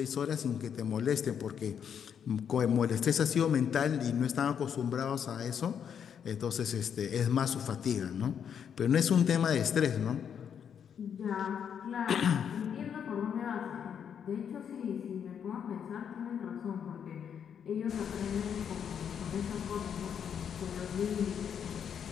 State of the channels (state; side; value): quieter; right; 8.0 dB